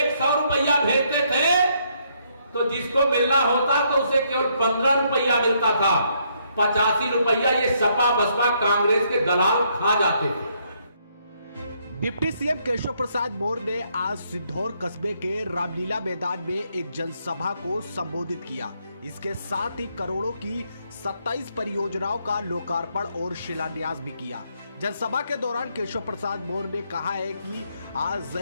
रुपया भेजते थे तो जिसको मिलना होता तो उसे केवल 15 रुपया मिलता था। 85 रुपया ये सपा बसपा कांग्रेस के दलाल खा जाते थे। डिप्टी सीएम केशव प्रसाद मौर्य ने आज सिद्धौर कस्बे के रामलीला मैदान में एक जनसभा को संबोधित किया। इसके साथ ही करोड़ों की 27 परियोजनाओं का लोकार्पण और शिलान्यास भी किया। जनसभा के दौरान केशव प्रसाद मौर्य ने कहा है कि आज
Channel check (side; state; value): both; inverted; correlation -0.72